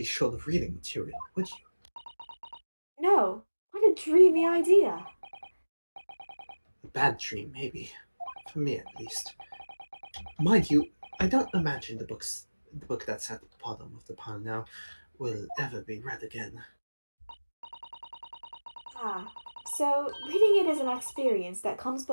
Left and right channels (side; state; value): both; inverted; correlation -1.00